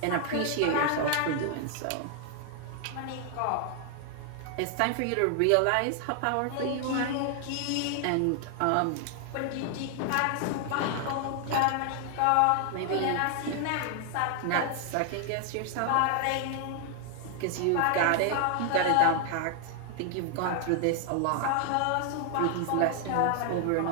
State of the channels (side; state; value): both; different; correlation 0.00